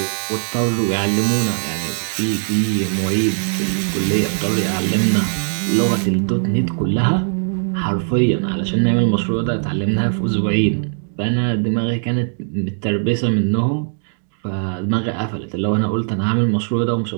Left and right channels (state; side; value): silent; left; digital silence